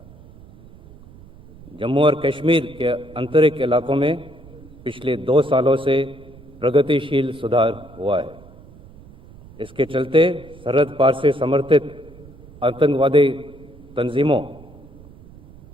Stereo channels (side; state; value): right; noise; rumble, 21 dB below the sound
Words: जम्मू और कश्मीर के आंतरिक इलाकों में पिछले 2 सालों से प्रगतिशील सुधार हुआ है। इसके चलते सरहद पार से समर्थित आतंकवादी तंजीमों